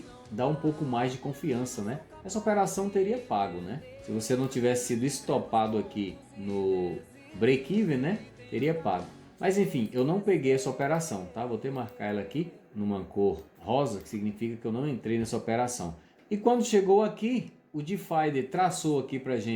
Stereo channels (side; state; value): both; identical; correlation 1.00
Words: dar um pouco mais de confiança, né? Essa operação teria pago, né? Se você não tivesse sido estopado aqui no break-even, né? Teria pago. Mas enfim, eu não peguei essa operação, tá? Vou ter que marcar ela aqui numa cor rosa, que significa que eu não entrei nessa operação. E quando chegou aqui, o Divider traçou aqui pra